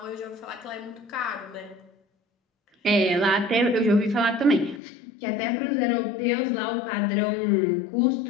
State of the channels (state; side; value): drops out; right; at 4.8 s